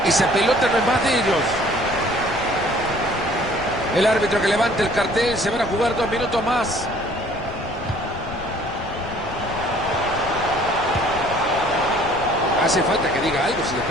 Esa pelota no es más de ellos. El árbitro que levanta el cartel, se van a jugar 2 minutos más. Hace falta que diga algo, si le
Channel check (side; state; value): left; noise; rumble, 14 dB below the sound